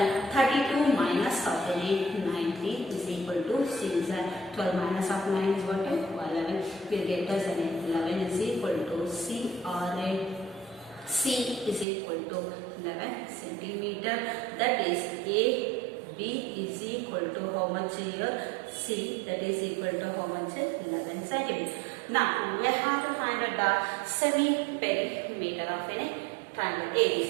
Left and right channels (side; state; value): left; drops out; at 11.9 s